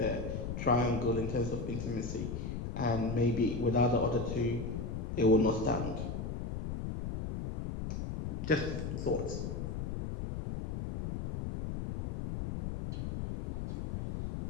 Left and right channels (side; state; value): left; noise; rumble, 4 dB below the sound